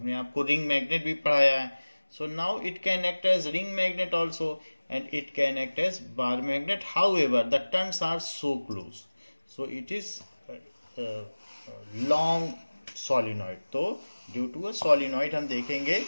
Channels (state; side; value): inverted; both; correlation -1.00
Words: आपको रिंग मैग्नेट भी पढ़ाया है। So now it can act as ring magnet also and it can act as bar magnet, however the turns are so close, so it is long solenoid. तो due to a solenoid हम देखेंगे